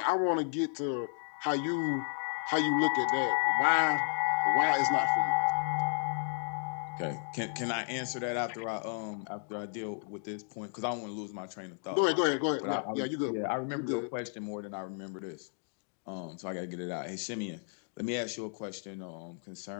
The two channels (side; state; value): right; silent; 56 dB below the other